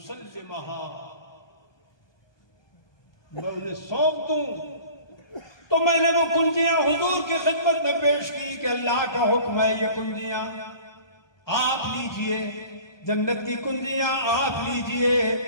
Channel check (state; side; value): late; right; 1.2 ms